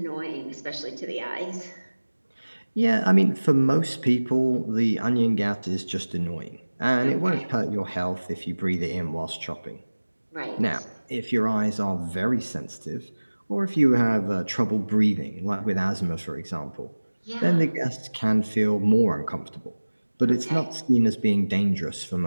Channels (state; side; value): inverted; both; correlation -1.00